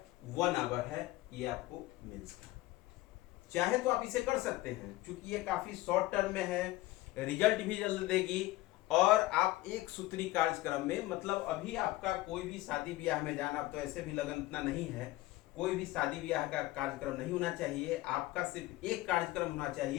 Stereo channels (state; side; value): quieter; right; 17.9 dB